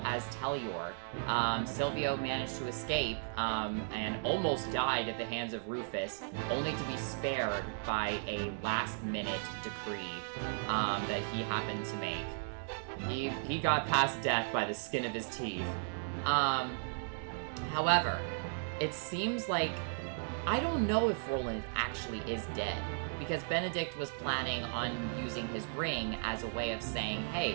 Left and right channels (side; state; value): left; silent; digital silence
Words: as Telior. Silvio managed to escape and almost died at the hands of Rufus, only to be spared by a last-minute decree that he happened to make. He got past death by the skin of his teeth. However, it seems like I don't know if Roland actually is dead, because Benedict was planning on using his ring as a way of saying,